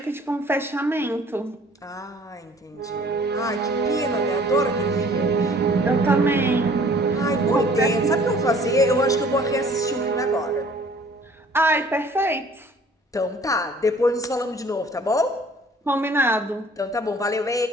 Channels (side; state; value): both; normal; correlation 0.53